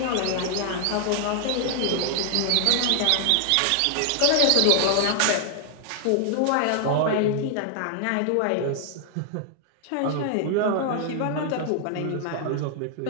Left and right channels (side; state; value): both; different; correlation 0.00